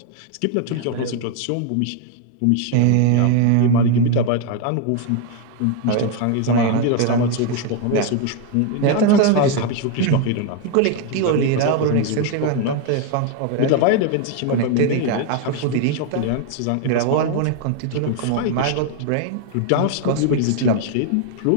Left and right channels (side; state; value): both; different; correlation 0.01